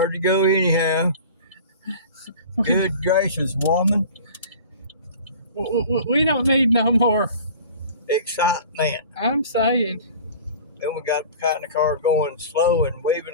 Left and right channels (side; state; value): both; inverted; correlation -0.41